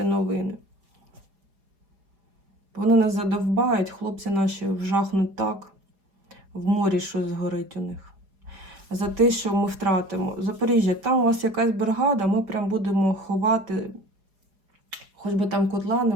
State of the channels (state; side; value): late; left; 5.0 ms